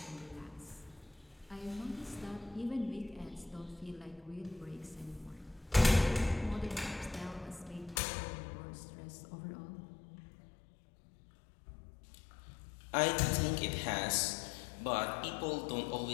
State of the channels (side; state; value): right; drops out; at 8.0 s